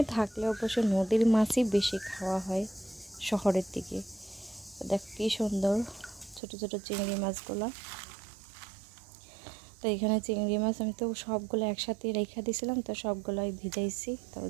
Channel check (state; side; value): drops out; left; at 6.4 s